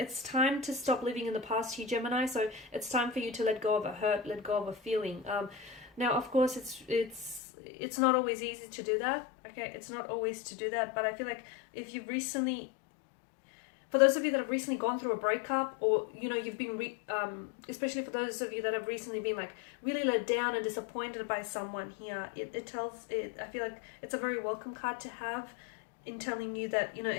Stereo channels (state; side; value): drops out; right; at 7.4 s